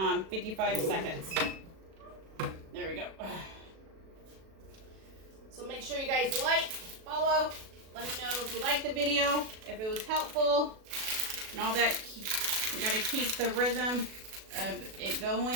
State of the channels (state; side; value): late; left; 37 ms